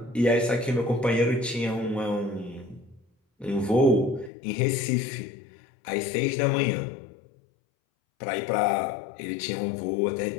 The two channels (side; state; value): right; drops out; at 4.3 s